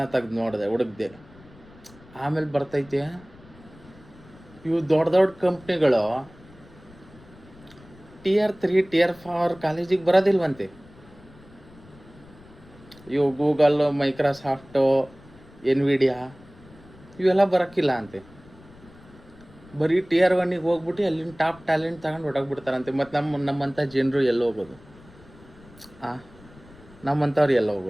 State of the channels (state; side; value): noise; left; rumble, 23 dB below the sound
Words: ತೆಗ್ದು ನೋಡಿದೆ, ಹುಡುಕ್ದೆ. ಆಮೇಲೆ ಬರ್ತೈತೆ ಇವು ದೊಡ್ಡ ಕಂಪ್ನಿಗಳು Tier 3 Tier 4 ಕಾಲೇಜಿಗೆ ಬರೋದಿಲ್ವಂತೆ. ಇವು ಗೂಗಲ್, ಮೈಕ್ರೋಸಾಫ್ಟು, ಎನ್ವಿಡಿಯಾ ಇವೆಲ್ಲ ಬರೋಕ್ಕಿಲ್ಲ ಅಂತೆ. ಬರೀ Tier 1ಗೆ ಹೋಗ್ಬಿಟ್ಟು ಅಲ್ಲಿನ ಟಾಪ್ ಟ್ಯಾಲೆಂಟ್ ತಗೊಂಡು ಹೊಡೋಗ್ಬಿಡ್ತಾರಂತೆ. ಮತ್ತು ನಮ್ಮಂಥ ಜನರು ಎಲ್ಲ ಹೋಗೋದು? ನಮ್ಮಂಥವ್ರು ಎಲ್ಲ